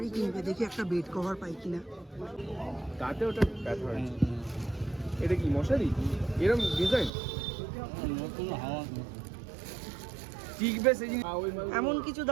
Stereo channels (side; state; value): left; drops out; at 7.1 s